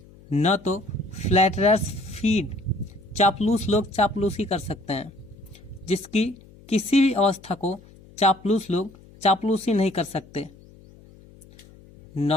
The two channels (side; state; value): left; noise; hum, 23 dB below the sound